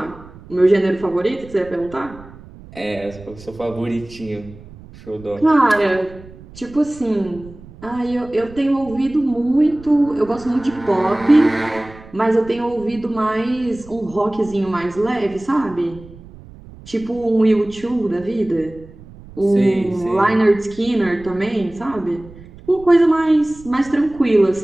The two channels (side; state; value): right; noise; rumble, 19 dB below the sound